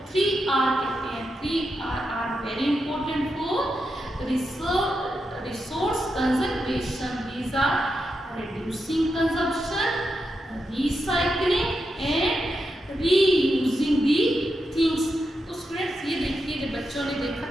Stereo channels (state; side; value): normal; both; correlation 0.86